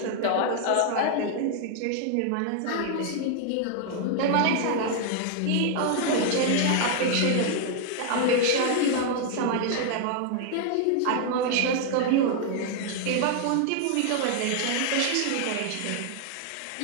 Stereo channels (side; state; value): both; different; correlation 0.00